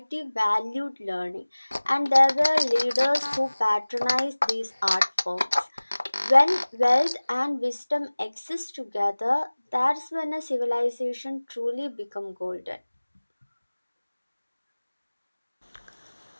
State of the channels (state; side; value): inverted; both; correlation -1.00